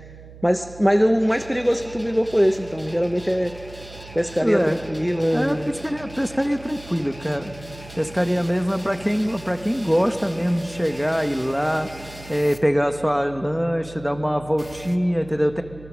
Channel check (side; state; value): right; noise; hum, 18 dB below the sound